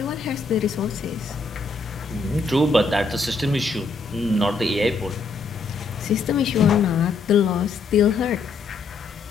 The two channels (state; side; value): quieter; right; 4.2 dB